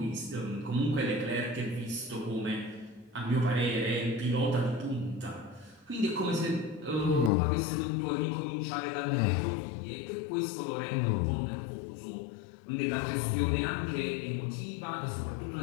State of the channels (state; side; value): drops out; right; at 7.3 s